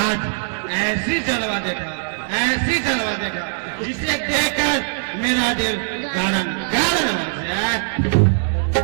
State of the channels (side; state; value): left; silent; digital silence